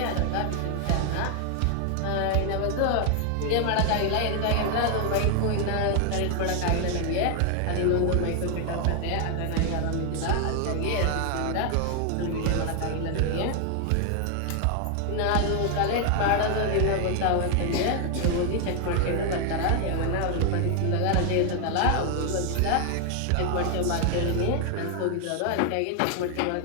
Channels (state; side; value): different; both; correlation 0.00